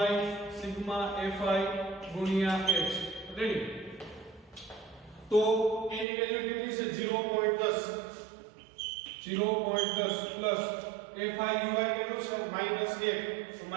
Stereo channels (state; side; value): drops out; left; at 6.1 s